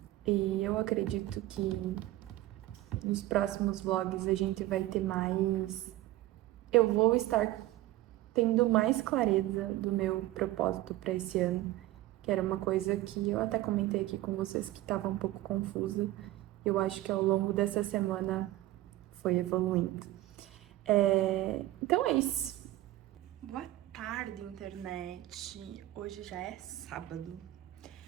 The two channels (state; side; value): quieter; left; 16.1 dB